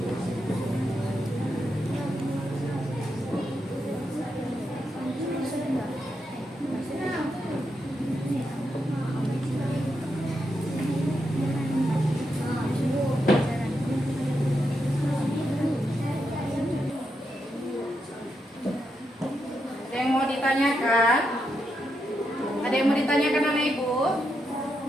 Ada yang mau ditanyakan? Ada yang mau ditanyakan anak ibu?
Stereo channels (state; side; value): normal; both; correlation 0.83